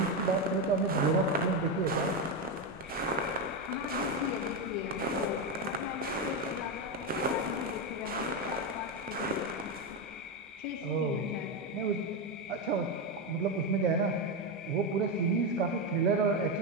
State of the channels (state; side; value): normal; both; correlation 0.09